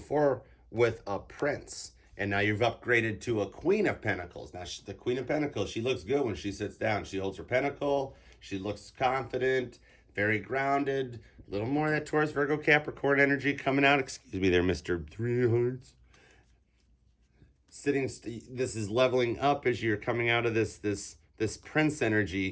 with a Prince, and now you've upgraded to a Queen of Pentacles. Now the Queen of Pentacles, she looks good when she sits down. She holds her pentacle. She looks confident, very grounded. A little more of that Taurus, Virgo, Capricorn energy coming out. Excuse me there, Mr. Three Hearts. This is leveling up as you're coming out of this Prince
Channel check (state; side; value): identical; both; correlation 1.00